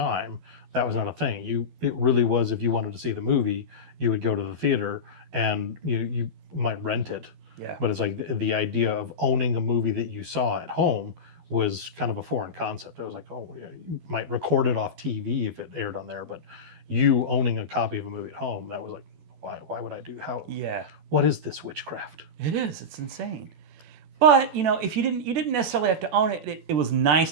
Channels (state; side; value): late; left; 12 ms